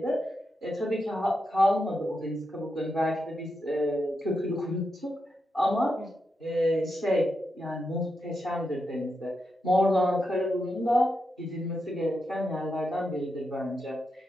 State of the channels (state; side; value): normal; both; correlation 0.86